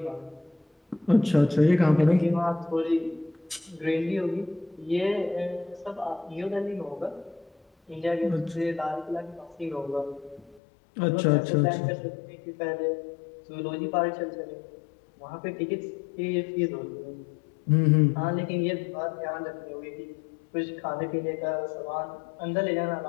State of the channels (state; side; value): drops out; right; at 10.6 s